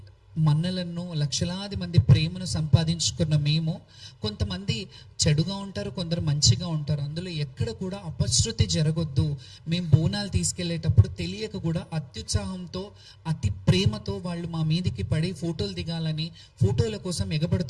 మన్నలను, లక్షలాది మంది ప్రేమను సంపాదించుకున్న మేము, కొంతమంది చెడుగా ఉంటారు, కొందరు మంచిగా ఉంటారు. అందులో ఎక్కడ కూడా అపశృతి జరగొద్దు. మేము బోనాలు తీసుకెళ్లేటప్పుడు తెలియక కూడా అత్యుత్సాహంతో, అతి ప్రేమతో వాళ్ళు మా మీదికి పడి ఫోటోలు దిగాలని ఫోటోల కోసం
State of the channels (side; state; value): both; identical; correlation 1.00